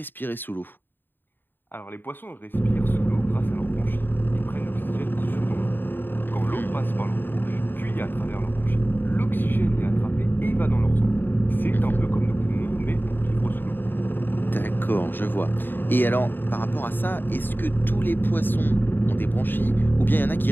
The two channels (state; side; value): late; right; 0.094 ms